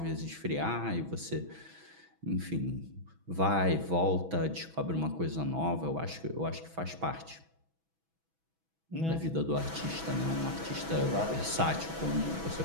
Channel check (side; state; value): left; late; 6.1 ms